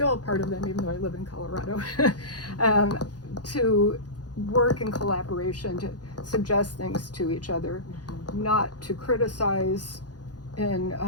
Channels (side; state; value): right; late; 0.69 ms